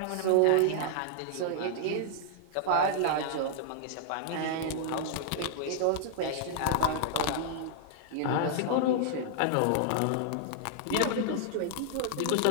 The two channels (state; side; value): different; both; correlation -0.01